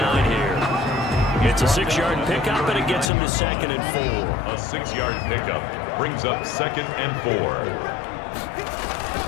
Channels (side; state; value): right; drops out; at 3.1 s